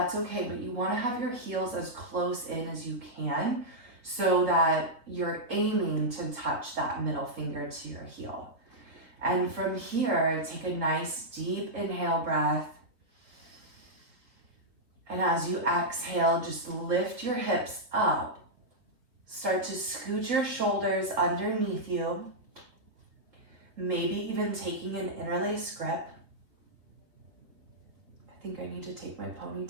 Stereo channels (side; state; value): left; late; 3.7 ms